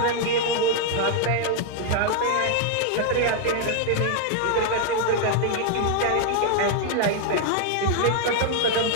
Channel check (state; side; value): different; both; correlation 0.00